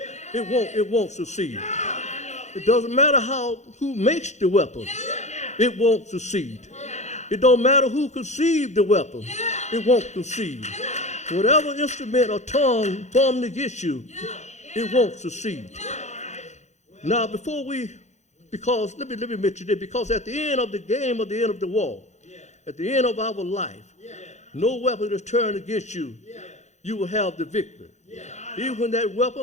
It won't succeed. It doesn't matter who makes the weapon. It won't succeed. It don't matter who conceived the weapon. It won't succeed. Whatever instrument or tongue formed against you, it won't succeed. Now, because let me mention this, because at the end of the game, at the end of the war, at the end of our life, no weapon is turned against you, you will have the victory. Even when that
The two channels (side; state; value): right; late; 0.33 ms